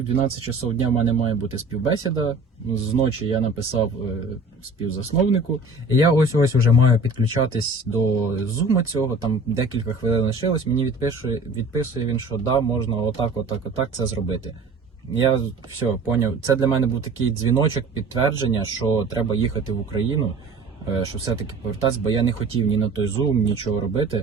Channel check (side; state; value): left; quieter; 3.2 dB